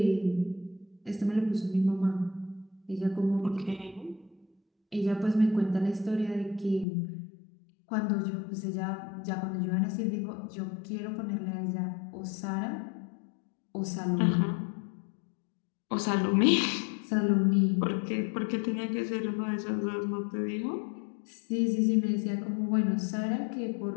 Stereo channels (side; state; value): right; drops out; at 6.9 s